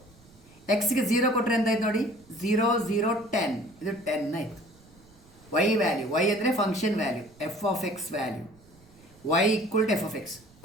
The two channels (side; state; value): right; noise; rumble, 26 dB below the sound